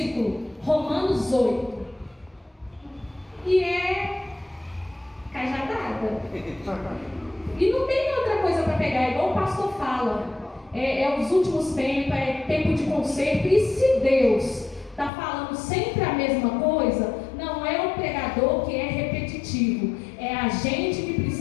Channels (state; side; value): drops out; right; at 15.1 s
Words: Romanos 8. E é cajadada. E não tem outra coisa para pegar, igual o pastor fala. É os últimos tempos, é tempo de conserto. E se Deus está falando sempre a mesma coisa, não é o pregador que é repetitivo, é a gente que